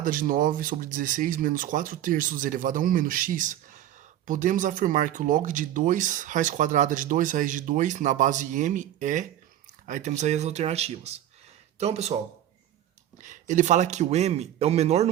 de 9 sobre 16 menos 4 terços elevado a 1 menos x, podemos afirmar que o log de 2 raiz quadrada de 2 raiz de 2 na base m é... Aí temos aí as alternativas. Então, pessoal, ele fala que o m é o menor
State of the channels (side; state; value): left; quieter; 12.0 dB